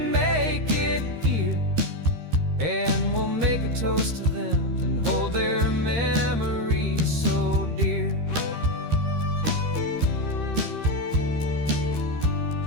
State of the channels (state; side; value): late; left; 13 ms